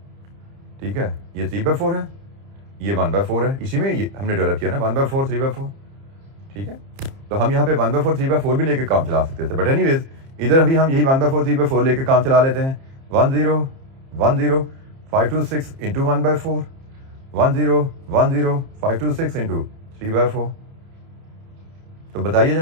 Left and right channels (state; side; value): late; left; 30 ms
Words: ठीक है। ये 3/4 है, ये 1/4 है, इसी में ये हमने डेवलप किया ना 1/4 3/4, ठीक है। तो हम यहाँ पे 1/4 3/4 भी लेके काम चला सकते थे, बट एनीवेज इधर अभी हम यही 1/4 3/4 लेके काम चला लेते हैं। 1010526 इंटू 1/4, 1010526 इंटू 3/4। तो बताइए